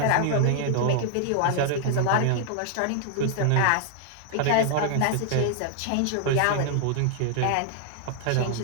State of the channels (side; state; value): both; different; correlation 0.00